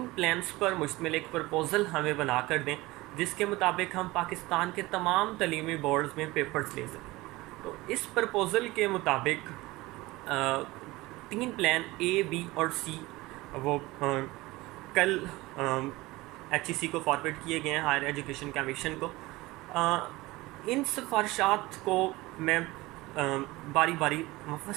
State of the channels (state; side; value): quieter; left; 20.3 dB